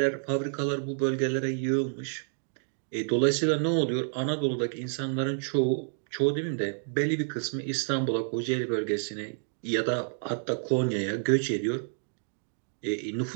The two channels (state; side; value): silent; left; digital silence